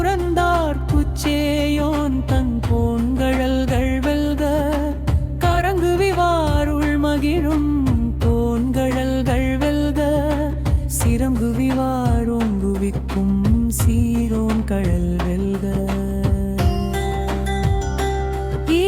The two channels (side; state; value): both; identical; correlation 1.00